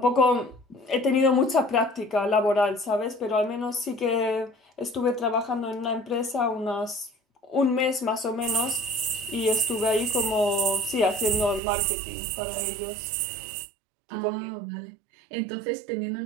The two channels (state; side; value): drops out; left; at 11.6 s